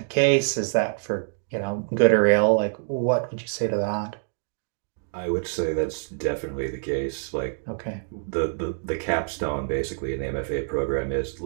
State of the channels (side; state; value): left; silent; 61 dB below the other